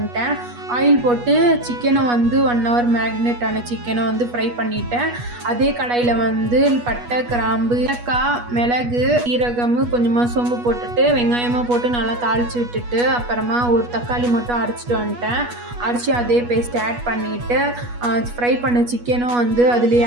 ஆயில் போட்டு சிக்கனை வந்து 1 hour மேக்னேட் ஆன சிக்கனை வந்து ஃப்ரை பண்ணிட்டேன் அதே கடாயில வந்து பட்டை கிராம்பு ஏலக்காய் மிளகு ஈரகம் கொஞ்சமா சோம்பு போட்டுட்டு வெங்காயமா போட்டு நல்லா தாளிச்சு விட்டுட்டு அப்புறமா ஒரு தக்காளி மட்டும் அரைச்சிட்டு வந்துட்டேன் அரைச்சி அதே பேஸ்ட் ஆட் பண்ணிட்டு ஃப்ரை பண்ண சிக்கனும் வந்து அதுலேயே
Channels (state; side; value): late; left; 8.3 ms